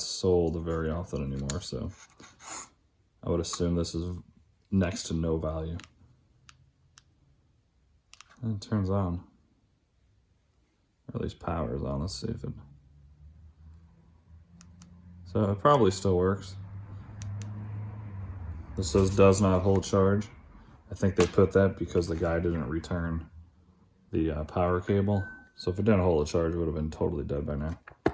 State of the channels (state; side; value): identical; both; correlation 1.00